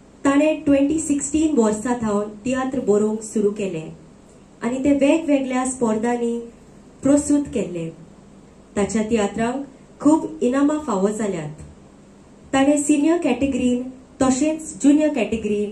ताणे 2016 वर्सा थावन तियात्र बरोवंक सुरू केले आनी ते वेगवेगळ्या स्पर्धांनी प्रस्तुत केले. ताच्या तियात्रांक खूब इनामां फावो जाल्यात. ताणे सिनियर कॅटेगरीन तशेंच ज्युनियर कॅटेगरीन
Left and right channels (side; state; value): both; identical; correlation 1.00